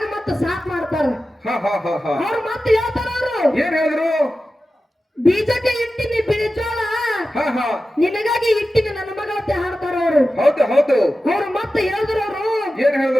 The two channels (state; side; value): normal; both; correlation 0.93